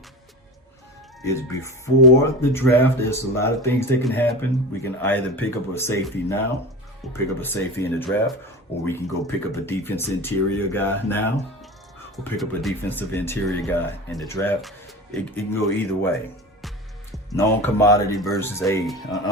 is before the draft. There's a lot of things that can happen. We can either pick up a safety now, or pick up a safety in the draft, or we can go pick up a defense interior guy now, or pick up a defensive interior guy in the draft. It can go either way. Known commodity versus an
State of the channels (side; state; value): both; normal; correlation 0.31